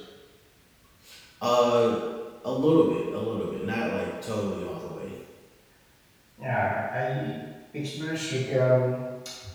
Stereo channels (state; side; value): identical; both; correlation 1.00